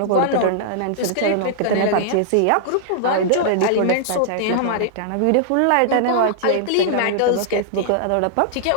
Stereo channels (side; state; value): both; different; correlation -0.01